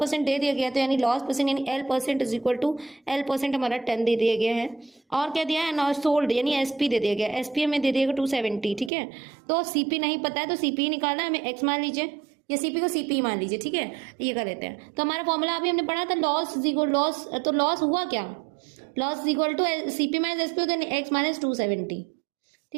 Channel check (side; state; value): left; drops out; at 8.9 s